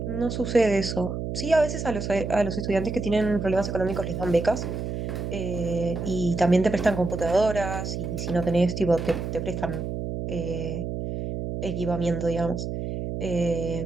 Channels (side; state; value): right; noise; hum, 4 dB below the sound